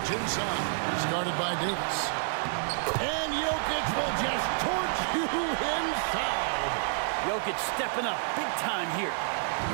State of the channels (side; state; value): left; silent; 58 dB below the other